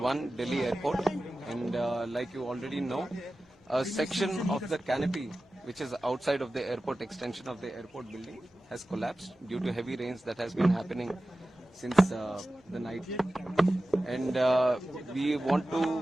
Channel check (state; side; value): normal; both; correlation 0.95